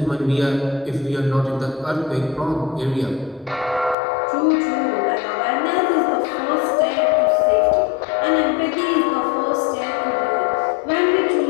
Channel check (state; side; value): drops out; right; at 4.0 s